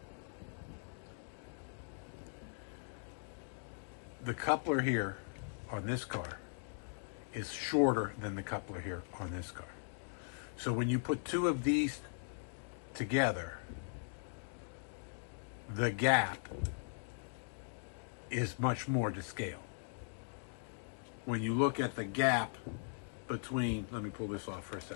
The coupler here on this car is shorter than the coupler here on this car. So when you put two of these together, the gap is much more to scale. When you look at the gap between, let me pull this off for a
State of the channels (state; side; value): silent; right; digital silence